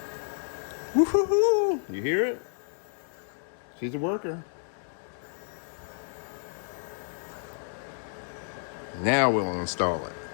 Woo-hoo-hoo. You hear it? She's a worker. Now we'll install it.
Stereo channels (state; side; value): silent; right; digital silence